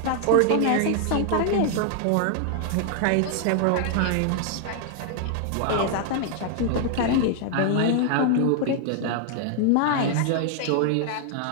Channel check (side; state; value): both; different; correlation 0.00